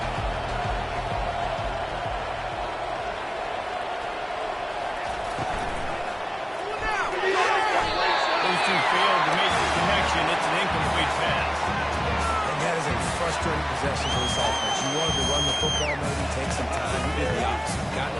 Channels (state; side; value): identical; both; correlation 1.00